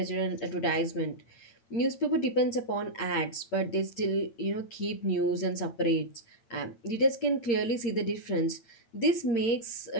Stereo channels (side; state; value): right; late; 8.9 ms